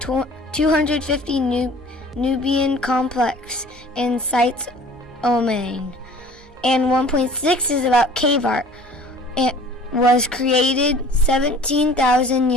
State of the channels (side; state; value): both; normal; correlation 0.48